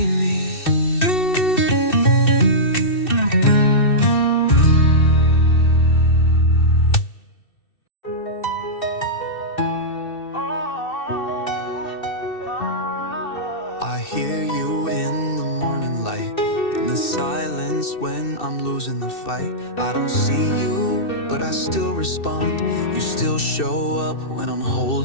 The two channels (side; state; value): right; late; 2.7 ms